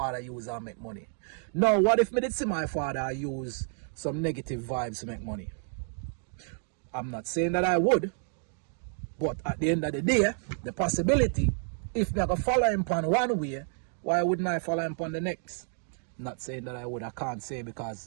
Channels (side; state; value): left; silent; 58 dB below the other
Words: use and make money. Now, what if me did see my father use some negative vibes to make money? I'm not saying that I would, but at the end of the day, the possibility, if me I could follow him on one way, why wouldn't I follow him on the next? Not saying that I would, I can't say,